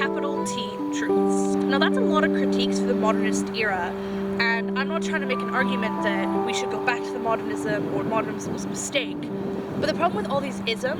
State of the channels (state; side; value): identical; both; correlation 1.00